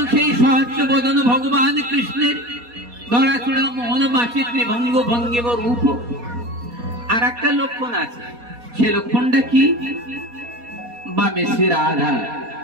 সেই সহাস্য বদন ভগবান কৃষ্ণের ধরাচূড়া মোহন মাসি ত্রিভঙ্গ ভঙ্গিম রূপ। আর একটা লক্ষণ আছে, সে লক্ষণটা কি? বামে শ্রী রাধা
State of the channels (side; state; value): left; late; 4.2 ms